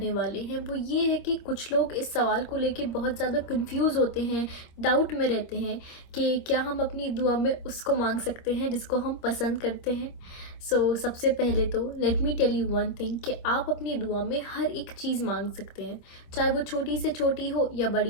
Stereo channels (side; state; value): right; late; 25 ms